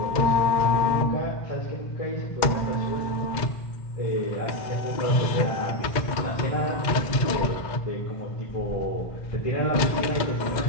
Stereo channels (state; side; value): late; right; 2.1 ms